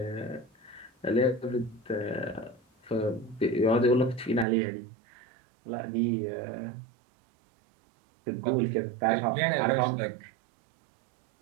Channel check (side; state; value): left; drops out; at 4.5 s